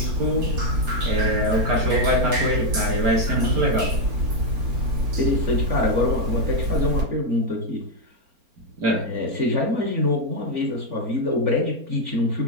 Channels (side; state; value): left; late; 4.3 ms